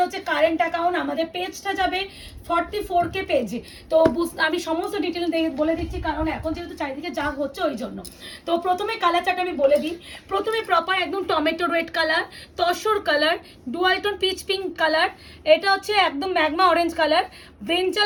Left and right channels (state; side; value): identical; both; correlation 1.00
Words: হচ্ছে কারেন্ট অ্যাকাউন্ট, আমাদের পেজটা যাবে 44K পেজে। তো আমি সমস্ত ডিটেল বলে দিচ্ছি, কারণ এখন যেহেতু চারিদিকে যা হচ্ছে ওই জন্য। তো প্রথমে কালার চার্ট আমি বলে দিই। প্রথমে প্রপার একদম tomato red colour, tussar colour, dualtone peach pink colour, এটা হচ্ছে একদম magma orange colour,